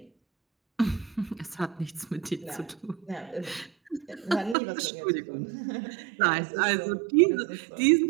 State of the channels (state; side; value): drops out; left; at 4.5 s